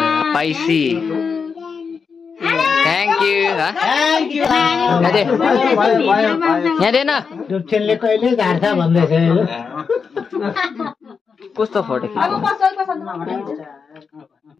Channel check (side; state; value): right; quieter; 5.6 dB